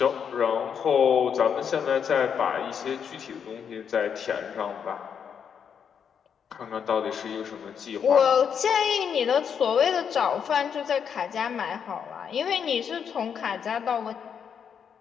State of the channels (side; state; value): right; quieter; 7.4 dB